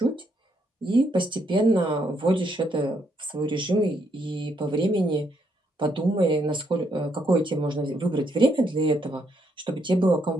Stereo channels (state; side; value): normal; both; correlation 0.74